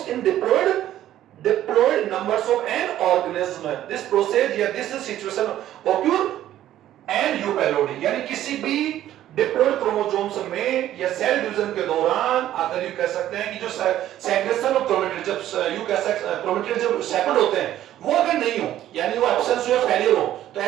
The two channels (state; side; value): quieter; left; 12.6 dB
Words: in diploid numbers of an organism. This process या this situation occur and eupelody, यानी किसी भी डिप्लॉइड क्रोमोसोम्स में या सेल डिवीजन के दौरान अगर यू कह सकते हैं कि जो सेग्रेशन ऑफ क्रोमेटिड, जब यू कह सकते हैं क्रोमेटिड जब सेपरेट होते हैं, वो अगर नहीं हो, यानी वो एब्सेंस हो या फेलियर हो, तो